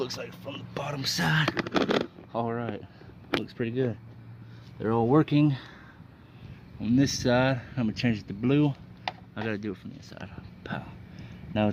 like from the bottom side. All right, looks pretty good. They're all working. On this side, I'm gonna change it to blue. I gotta do it from the inside. Pow. Now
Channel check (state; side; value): identical; both; correlation 1.00